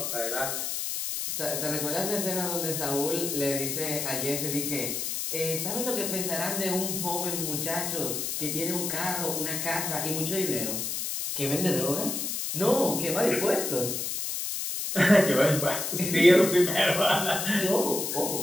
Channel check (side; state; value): left; noise; hiss, 2 dB below the sound